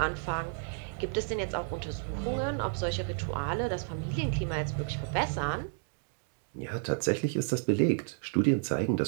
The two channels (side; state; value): left; silent; 57 dB below the other